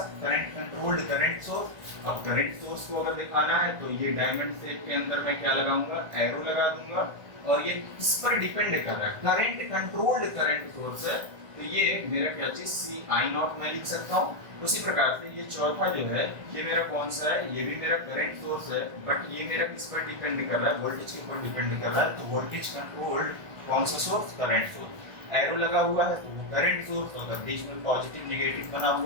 करंट कंट्रोल्ड करंट सोर्स। अब करंट सोर्स को अगर दिखाना है तो ये डायमंड शेप के अंदर मैं क्या लगाऊंगा, एरो लगा दूंगा, और ये इस पर डिपेंड कर रहा है, करंट कंट्रोल्ड करंट सोर्स है, तो ये मेरा क्या चीज सी आई नॉट में लिख सकता हूँ। उसी प्रकार से ये चौथा जो है ये मेरा कौन सा है, ये भी मेरा करंट सोर्स है, बट ये मेरा किस पर डिपेंड कर रहा है, वोल्टेज के ऊपर डिपेंड कर रहा है, तो वोल्टेज कंट्रोल्ड कौन सा सोर्स, करंट सोर्स। एरो लगा हुआ है तो वो करंट सोर्स, अगर बीच में पॉजिटिव नेगेटिव बना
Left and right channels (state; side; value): late; left; 1.5 ms